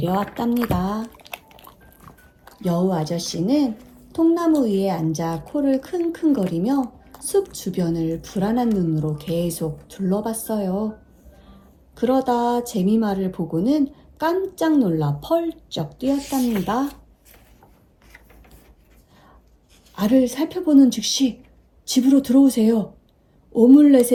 여우 아저씨는 통나무 위에 앉아 코를 킁킁거리며 숲 주변을 불안한 눈으로 계속 둘러봤어요. 그러다 재미마를 보고는 깜짝 놀라 펄쩍 뛰었답니다. 알을 살펴보는 즉시 집으로 들어오세요.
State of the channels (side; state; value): both; identical; correlation 1.00